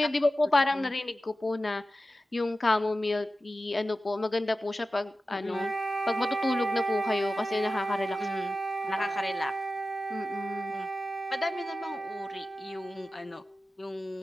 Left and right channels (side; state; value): both; normal; correlation 0.94